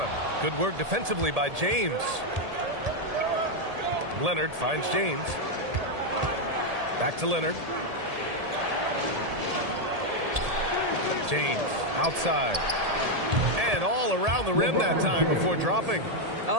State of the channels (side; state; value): left; late; 1.8 ms